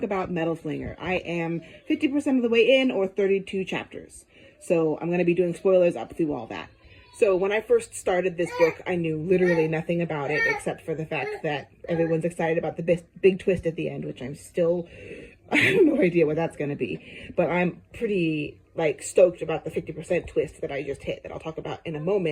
about Metal Slinger. I am 50% of the way in, or 32 chapters. So I'm going to be doing spoilers up through all that. So when I first started this book, I knew literally nothing about it except for the fact that everyone's excited about the big twist at the end, which I have no idea what that's going to be. But I'm pretty stoked about the 50% twist that I just hit that I'll talk about in a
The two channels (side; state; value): both; identical; correlation 1.00